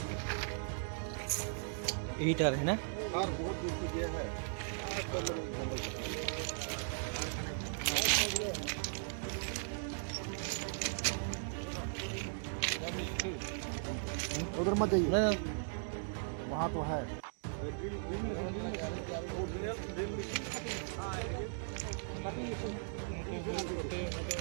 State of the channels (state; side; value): silent; left; digital silence